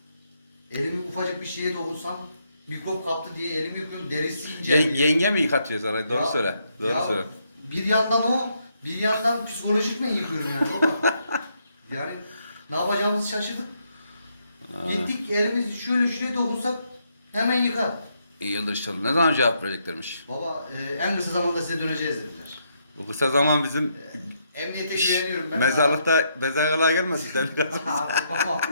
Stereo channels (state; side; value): inverted; both; correlation -0.76